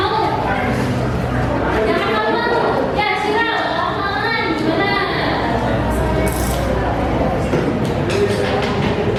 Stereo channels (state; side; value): identical; both; correlation 1.00